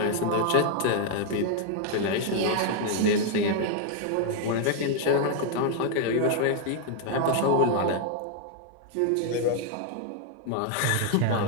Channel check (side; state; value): both; different; correlation 0.00